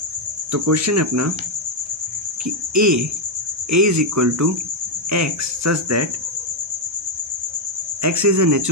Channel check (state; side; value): normal; both; correlation 0.02